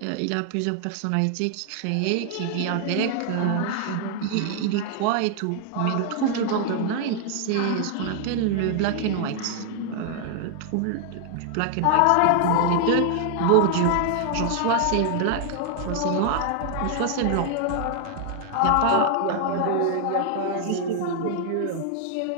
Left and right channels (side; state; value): both; different; correlation 0.00